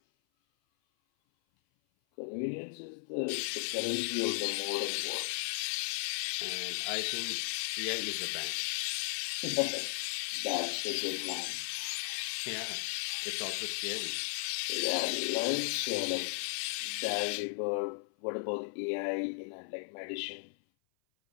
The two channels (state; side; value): silent; right; 54 dB below the other